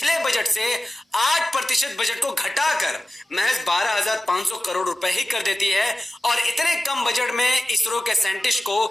बजट से 8% बजट को घटाकर महज 12,500 करोड़ रुपए ही कर देती है और इतने कम बजट में इसरो के साइंटिस्ट को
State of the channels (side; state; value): both; normal; correlation 0.95